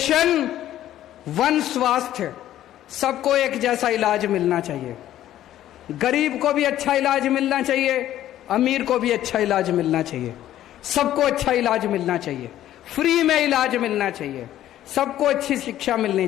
1 स्वास्थ्य, सबको एक जैसा इलाज मिलना चाहिए। गरीब को भी अच्छा इलाज मिलना चाहिए, अमीर को भी अच्छा इलाज मिलना चाहिए, सबको अच्छा इलाज मिलना चाहिए, फ्री में इलाज मिलना चाहिए, सबको अच्छी शिक्षा मिलनी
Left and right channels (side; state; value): right; quieter; 12.7 dB